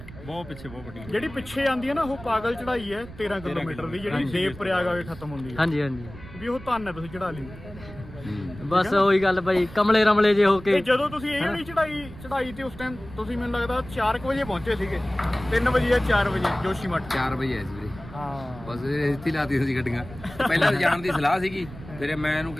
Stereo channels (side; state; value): right; noise; rumble, 16 dB below the sound